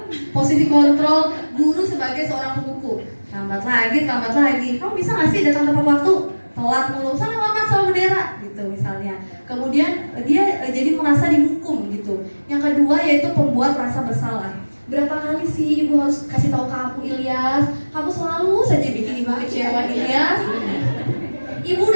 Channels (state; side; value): inverted; both; correlation -1.00